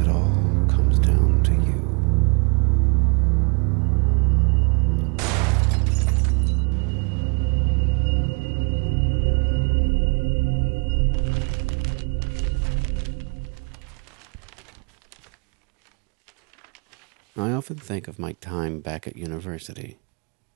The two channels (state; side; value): quieter; left; 35.2 dB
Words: all comes down to you. I often think of my time back at university,